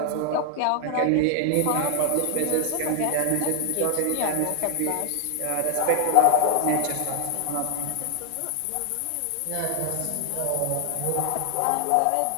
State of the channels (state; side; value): different; both; correlation 0.00